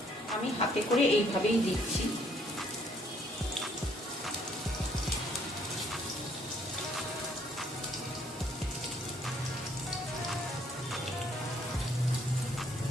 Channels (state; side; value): normal; both; correlation 0.65